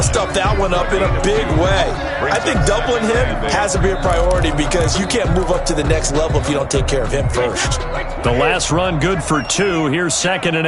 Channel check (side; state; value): both; identical; correlation 1.00